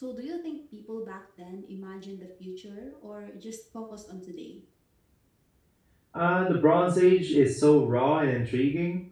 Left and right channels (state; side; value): identical; both; correlation 1.00